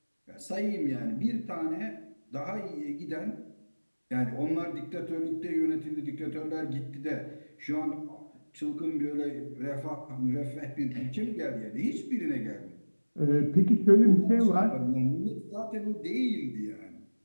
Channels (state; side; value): inverted; both; correlation -1.00